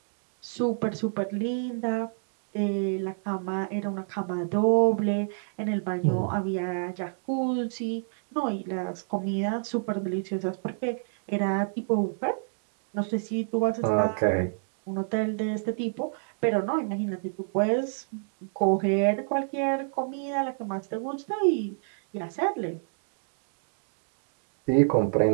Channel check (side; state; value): left; silent; digital silence